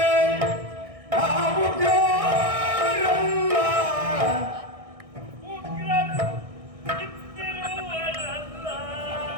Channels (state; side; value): late; left; 1.6 ms